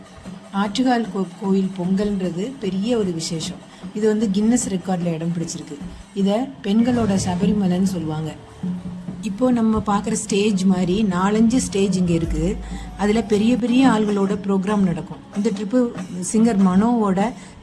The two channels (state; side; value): identical; both; correlation 1.00